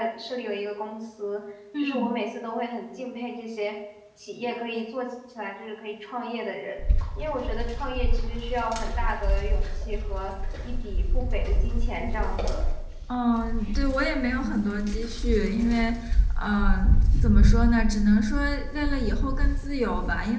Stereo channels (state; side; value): identical; both; correlation 1.00